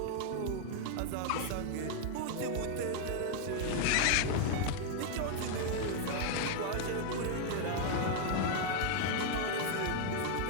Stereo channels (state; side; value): different; both; correlation 0.00